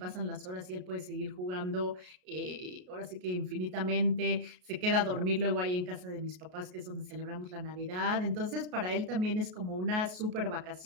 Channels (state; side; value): late; left; 33 ms